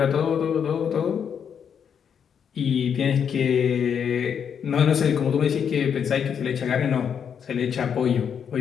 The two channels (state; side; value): quieter; right; 7.6 dB